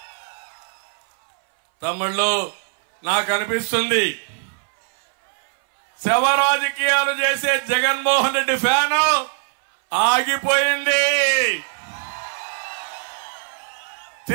తమ్ముళ్ళు, నాకు అనిపిస్తుంది శవ రాజకీయాలు చేసే జగన్మోహన్ రెడ్డి ఫ్యాను ఆగిపోయింది.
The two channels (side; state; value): left; silent; 60 dB below the other